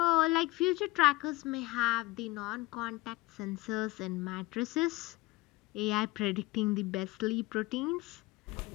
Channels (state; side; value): quieter; right; 20.5 dB